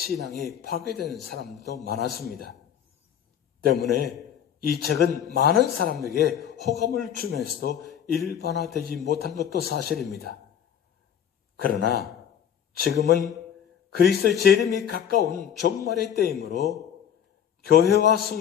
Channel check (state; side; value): quieter; right; 9.0 dB